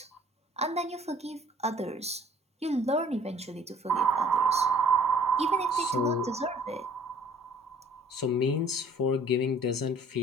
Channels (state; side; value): normal; both; correlation 0.56